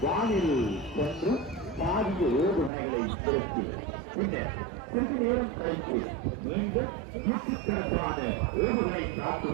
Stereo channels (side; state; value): left; drops out; at 2.7 s